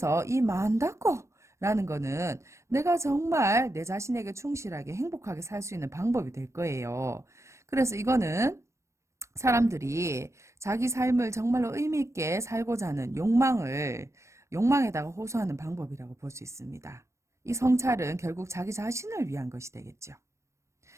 이 만다고 라는 거는 내가 정말 내 자신에게 충실하게 행복하게 살 수 있는 방법이 될 거예요. 그래서 이거는 사람들이 자기 삶을 정말로 의미 있게 살고자 하는 욕망에다가 호소하는 방법이라고 볼 수 있습니다. 이 성찰은 결국 자기 자신을 위한 것이 되겠죠.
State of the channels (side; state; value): left; late; 0.14 ms